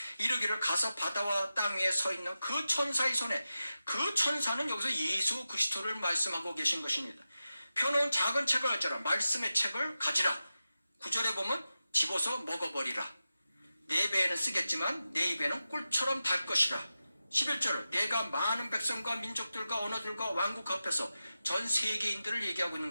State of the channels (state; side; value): inverted; both; correlation -0.92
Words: 이르기를 가서 바다와 땅 위에 서 있는 그 천사의 손에, 그 천사는 여기서 예수 그리스도를 말씀하고 계신 것입니다. 펴놓은 작은 책을 가져라. 말씀의 책을 가지라. 9절에 보면 집어서 먹어버리라. 내 배에는 쓰겠지만 내 입에는 꿀처럼 달 것이라. 11절, 내가 많은 백성과 민족들과 언어들과 왕국 앞에서 전 세계인들을 얘기하고 있는